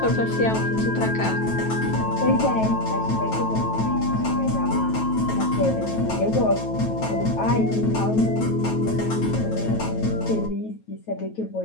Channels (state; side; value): late; right; 9.2 ms